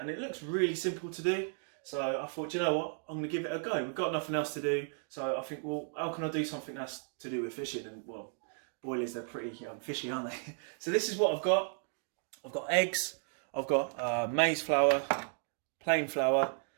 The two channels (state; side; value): silent; left; 55 dB below the other